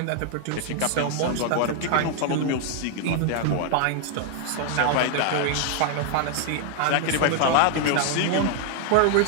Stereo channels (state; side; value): different; both; correlation 0.00